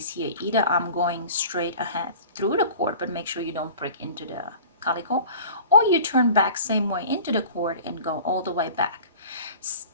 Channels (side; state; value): both; inverted; correlation -0.42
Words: here. Either I'm going straight ahead through the cord, but make sure you don't prick into the calico, or you turn back same way into the cord and go all the way back.